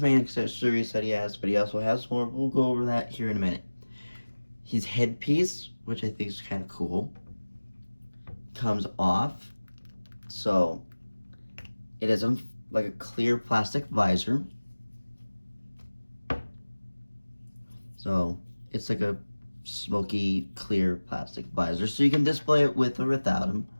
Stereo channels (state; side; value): inverted; both; correlation -1.00